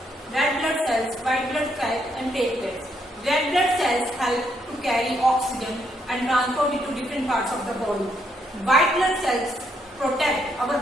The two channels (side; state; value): both; normal; correlation 0.74